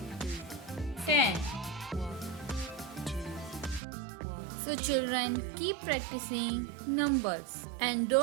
10. So children, keep practicing numbers and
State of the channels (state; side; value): drops out; left; at 3.8 s